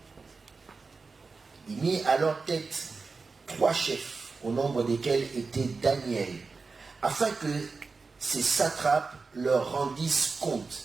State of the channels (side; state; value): left; quieter; 4.3 dB